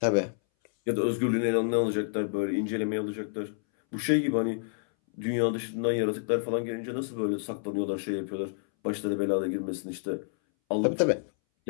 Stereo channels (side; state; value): right; silent; 59 dB below the other